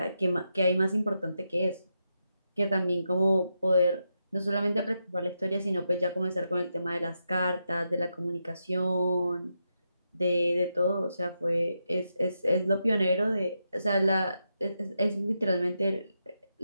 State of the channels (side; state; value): both; inverted; correlation -0.85